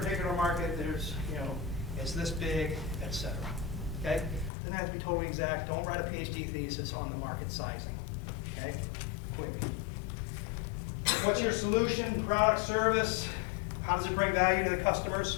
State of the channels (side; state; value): right; drops out; at 4.5 s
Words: market, there's, you know, it's this big, etc. Okay? Doesn't have to be totally exact. Don't write a PhD thesis on the market sizing. Okay? Quick. What's your solution, product, service? How does it bring value to the